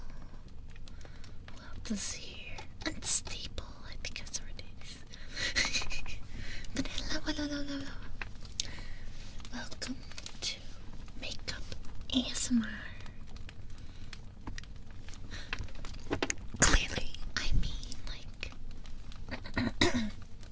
Who else is here? Unstable. I think that's what it is. But hello. Welcome to Makeup ASMR. Clearly, I mean, like, I'm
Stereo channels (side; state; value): both; identical; correlation 1.00